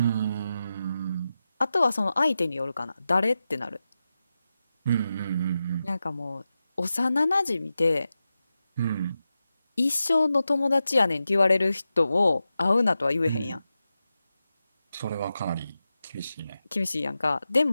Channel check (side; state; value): both; inverted; correlation -0.92